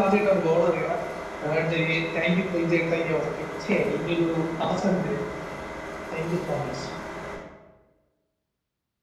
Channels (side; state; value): both; identical; correlation 1.00